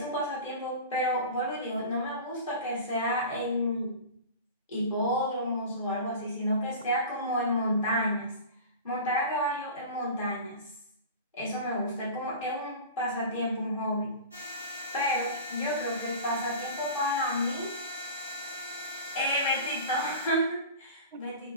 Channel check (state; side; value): inverted; both; correlation -0.35